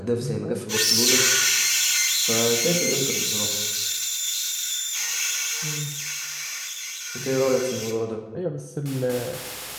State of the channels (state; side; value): identical; both; correlation 1.00